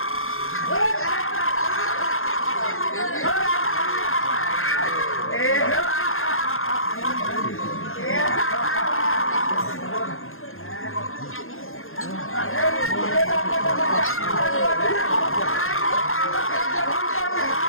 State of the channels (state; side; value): late; right; 0.60 ms